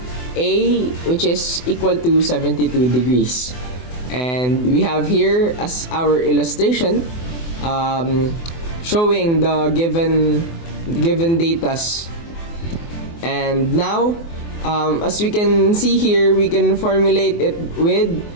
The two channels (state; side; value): late; right; 24 ms